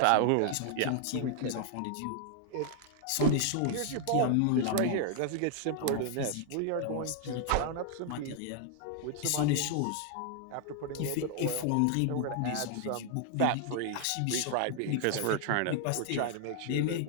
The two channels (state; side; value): different; both; correlation 0.00